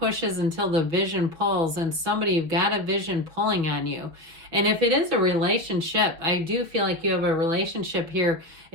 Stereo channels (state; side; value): late; left; 6.3 ms